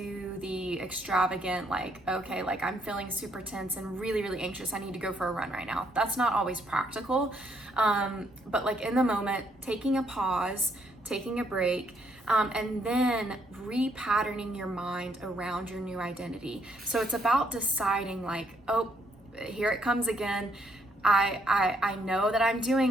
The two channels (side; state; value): both; normal; correlation 0.72